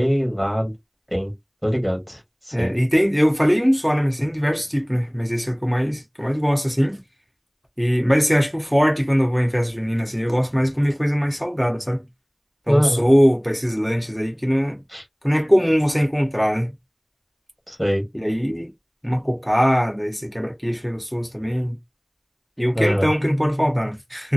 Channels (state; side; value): identical; both; correlation 1.00